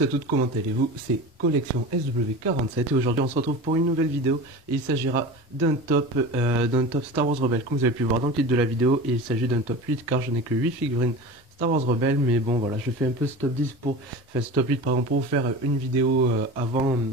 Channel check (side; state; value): both; normal; correlation 0.32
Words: à toutes, comment allez-vous? C'est Collection SW47 et aujourd'hui on se retrouve pour une nouvelle vidéo et il s'agira d'un top Star Wars Rebelle comme vous avez pu voir dans le titre de la vidéo, et il s'agit d'un top 8 car je n'ai que 8 figurines Star Wars Rebelle, mais bon voilà, je fais un peu ce top 10 enfin ce top 8 pardon, pour vous faire une vidéo avant